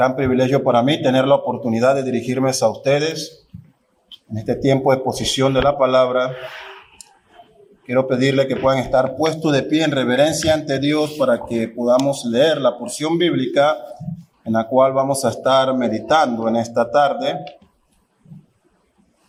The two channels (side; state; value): both; identical; correlation 1.00